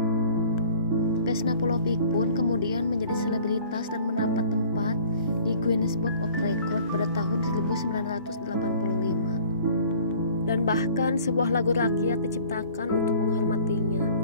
Vesna Pulpolik pun kemudian menjadi selebritas dan mendapat tempat di Guinness Book of Record pada tahun 1985. Dan bahkan sebuah lagu rakyat diciptakan untuk menghormatinya,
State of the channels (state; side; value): inverted; both; correlation -0.50